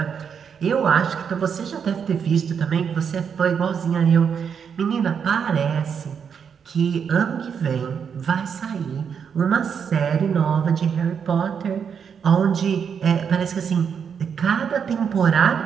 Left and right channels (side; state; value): left; quieter; 7.0 dB